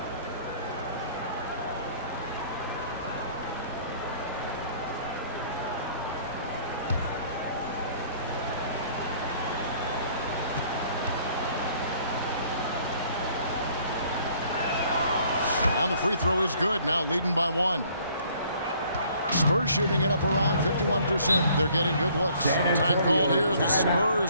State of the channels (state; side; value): inverted; both; correlation -0.59